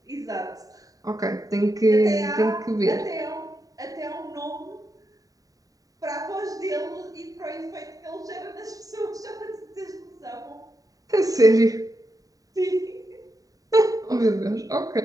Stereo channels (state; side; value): late; left; 0.17 ms